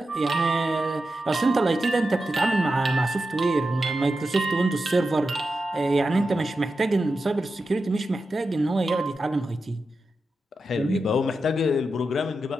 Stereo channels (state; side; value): normal; both; correlation 0.90